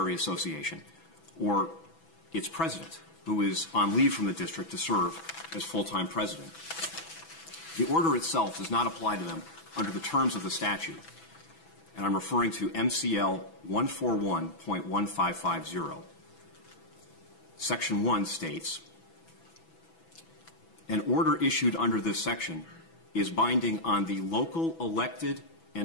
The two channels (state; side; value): late; right; 6.0 ms